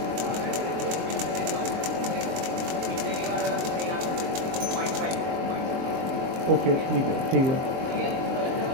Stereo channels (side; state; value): left; late; 23 ms